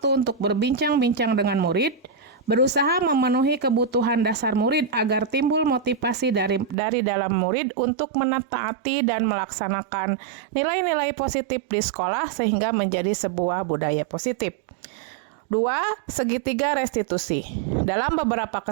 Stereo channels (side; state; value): left; drops out; at 6.8 s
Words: untuk berbincang-bincang dengan murid, berusaha memenuhi kebutuhan dasar murid agar timbul motivasi dari dalam murid untuk menetaati dan melaksanakan nilai-nilai positif di sekolah sehingga menjadi sebuah budaya positif. 2. Segitiga restitusi. Dalam beberapa